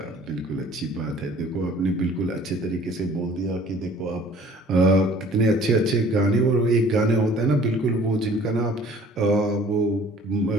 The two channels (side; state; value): both; normal; correlation 0.52